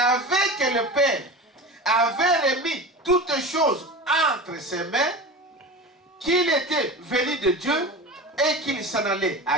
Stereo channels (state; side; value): normal; both; correlation 0.31